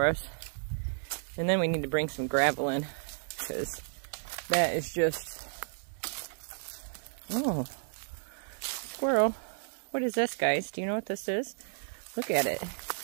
us. And then we need to bring some gravel in, because that is just, oh, squirrel. What is this, guys? Do you know what this is? Look at it.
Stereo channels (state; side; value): silent; left; digital silence